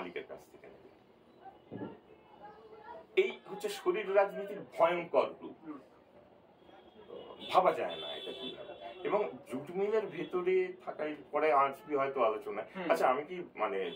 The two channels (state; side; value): identical; both; correlation 1.00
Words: কাছ থেকে নেবে। এই হচ্ছে শরীর রাজনীতির ভয়ঙ্কর রূপ, ভাবা যায় না এটা কিভাবে। এবং জুট মিলের ভেতরে থাকার পরে আসবি হয়তো আলোচনা। আচ্ছা, আমি কি মানে